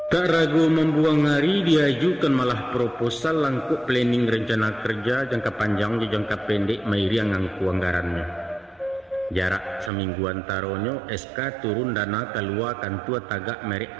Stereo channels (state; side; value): drops out; left; at 9.9 s